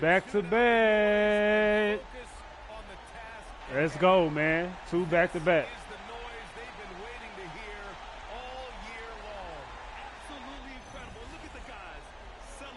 back to back. Let's go, man. 2 back to back.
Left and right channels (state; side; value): identical; both; correlation 1.00